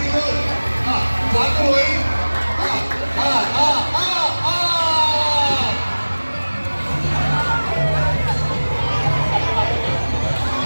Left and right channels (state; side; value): inverted; both; correlation -1.00